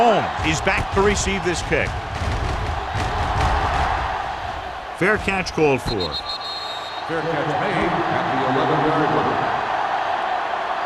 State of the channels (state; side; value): identical; both; correlation 1.00